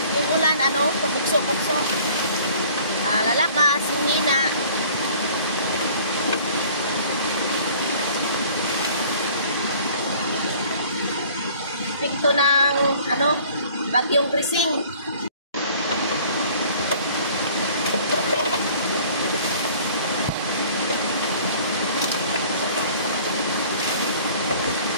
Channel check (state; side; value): inverted; both; correlation -0.51